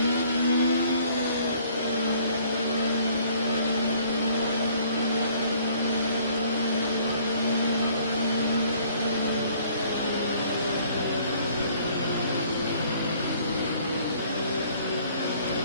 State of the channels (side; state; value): both; inverted; correlation -0.59